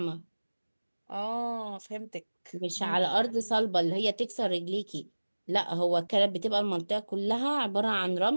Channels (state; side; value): inverted; both; correlation -1.00